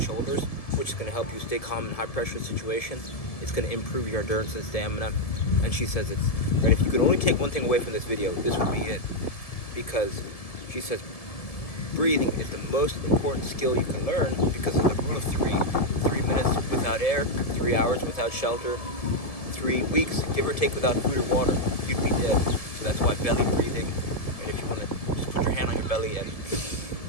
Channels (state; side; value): late; right; 1.7 ms